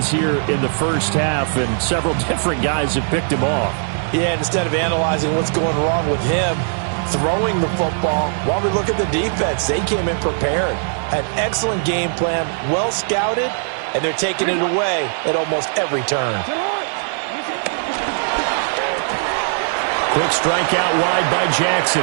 here in the first half, and several different guys have picked him off. Yeah, instead of analyzing what's going wrong with him, throwing the football, while we look at the defense, they came in prepared. An excellent game plan, well scouted, and they're taking it away at almost every turn. Quick strike out wide by Jackson.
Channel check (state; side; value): silent; left; digital silence